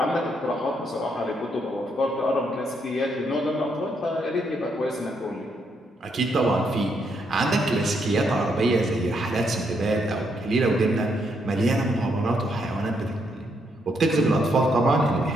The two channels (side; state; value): both; normal; correlation 0.76